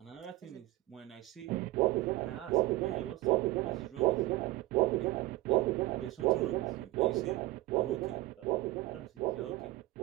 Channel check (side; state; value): left; quieter; 18.0 dB